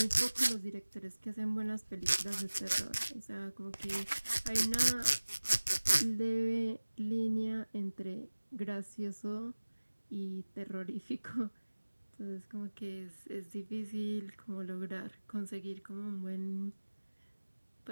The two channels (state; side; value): inverted; both; correlation -1.00